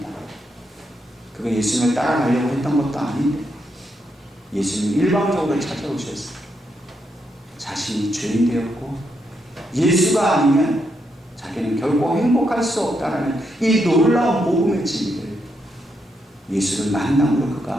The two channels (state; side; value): normal; both; correlation 0.80